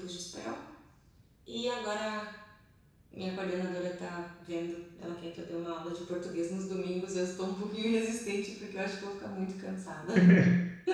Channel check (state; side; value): identical; both; correlation 1.00